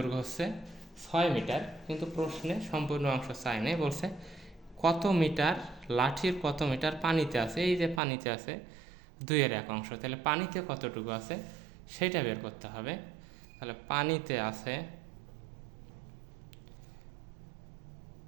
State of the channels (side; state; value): left; drops out; at 8.0 s